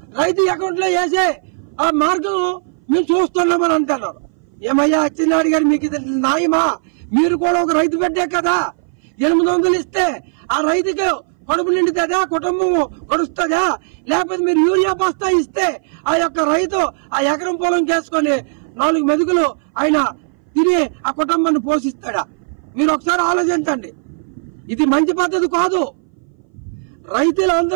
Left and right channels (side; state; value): left; silent; 62 dB below the other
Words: రైతు అకౌంట్ లో వేసే ఆ మార్గం మేము చూస్తున్నామని అంటున్నారు. ఏమయ్యా అచ్చెన్నాయుడు గారు, మీకు ఇది న్యాయమా? మీరు కూడా ఒక రైతు బిడ్డే కదా. 800 ఇస్తే ఆ రైతుకి కడుపు నిండుతుందా, కుటుంబం గడుస్తుందా? లేకపోతే మీరు యూరియా బస్తా ఇస్తే ఆ యొక్క రైతు ఆ ఎకరం పొలం చేసుకుని 4 మెతుకులు ఆయన తిని ఆ కుటుంబాన్ని పోషిస్తాడా? మీరు ఒకసారి ఆలోచించండి. ఇది మంచి పద్ధతి కాదు.